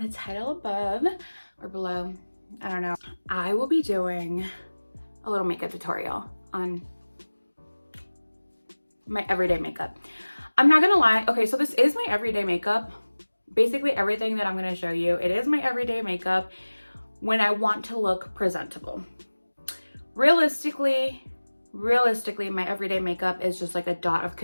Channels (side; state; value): both; inverted; correlation -1.00